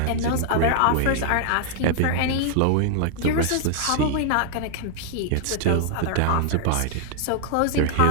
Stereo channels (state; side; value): different; both; correlation 0.00